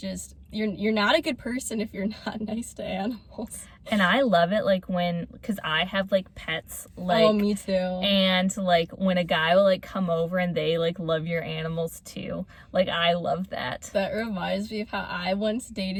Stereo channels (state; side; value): identical; both; correlation 1.00